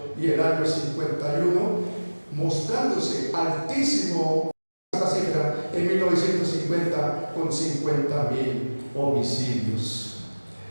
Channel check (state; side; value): inverted; both; correlation -1.00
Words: y el año 51, mostrándose altísimo esta cifra en 1950 con 50.000 homicidios.